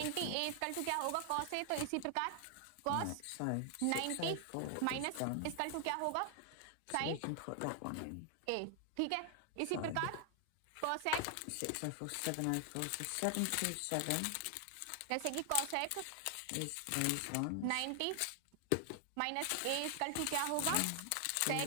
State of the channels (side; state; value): both; different; correlation 0.00